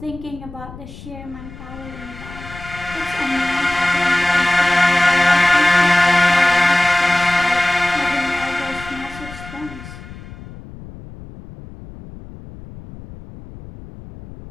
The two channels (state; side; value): noise; left; rumble, 16 dB below the sound